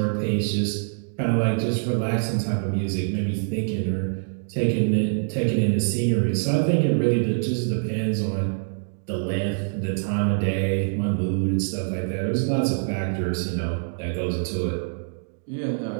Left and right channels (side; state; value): left; silent; digital silence